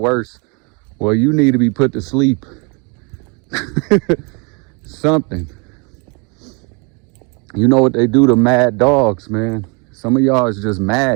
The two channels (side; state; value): left; quieter; 32.5 dB